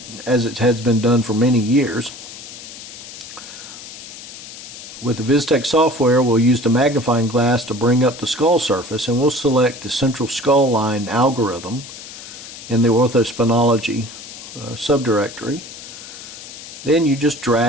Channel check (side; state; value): left; noise; hiss, 14 dB below the sound